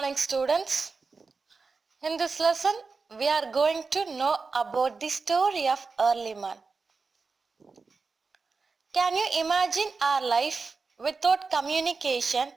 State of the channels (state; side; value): quieter; left; 4.5 dB